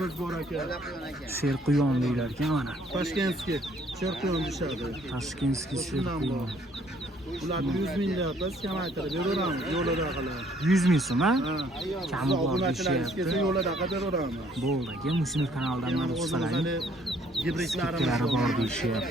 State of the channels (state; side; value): normal; both; correlation 0.63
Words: bor aka. Serquyon deylar ekan mana. Toshkentskiy serquyon dishadi. Toshkentskiy serquyon. Ularni 100 ming deyapmiz, kamaytirib beraveramiz yo'lida qilib. 100 ming so'm, ha? Kami bor deyapti. Yo'lida qilib beraveramiz. Bo'ldi, aka, Mushinov kanalidan mana chiqsalaring. Gibridlarimiz bor